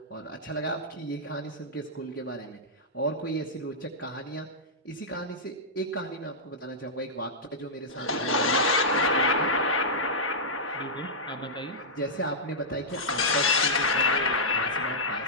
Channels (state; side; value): normal; both; correlation -0.11